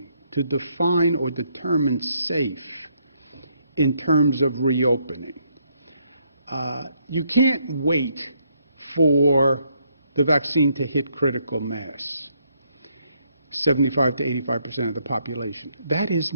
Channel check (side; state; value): both; inverted; correlation -0.73